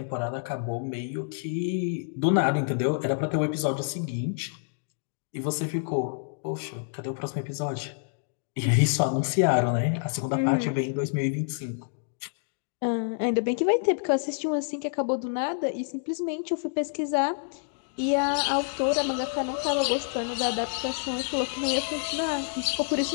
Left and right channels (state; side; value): silent; right; digital silence